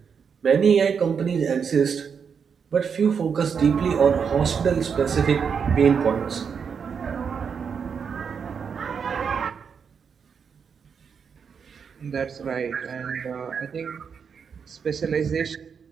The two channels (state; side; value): quieter; left; 6.5 dB